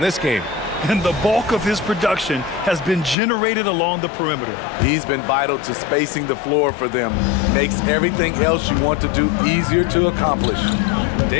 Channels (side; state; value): right; drops out; at 3.2 s